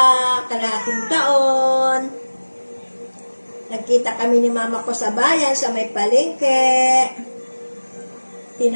kalahating taon. Nagkita kami ni mama ko sa bayan, sa may palengke.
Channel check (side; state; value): both; inverted; correlation -1.00